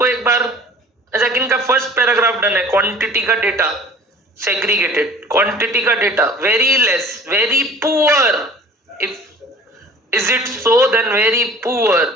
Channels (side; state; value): both; normal; correlation 0.47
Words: एक बार। अच्छा, किनका फर्स्ट पैराग्राफ डन है? क्वांटिटी का डेटा सेग्रीगेटेड, क्वांटिटी का data very less, very poor. If is it so then very poor,